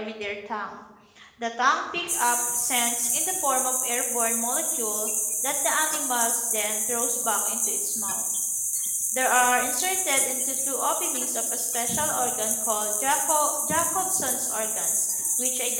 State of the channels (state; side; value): identical; both; correlation 1.00